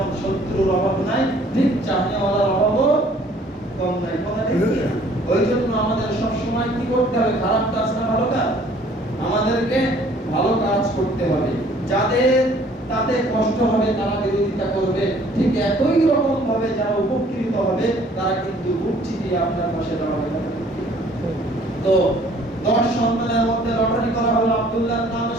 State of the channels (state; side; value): normal; both; correlation 0.57